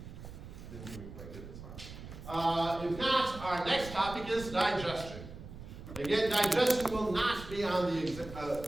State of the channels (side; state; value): right; noise; rumble, 13 dB below the sound